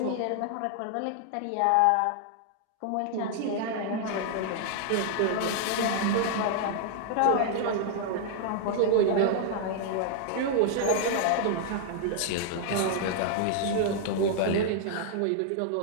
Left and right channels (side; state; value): both; different; correlation 0.00